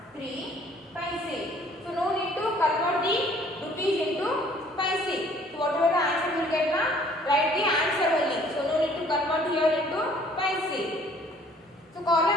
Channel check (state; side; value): normal; both; correlation 0.57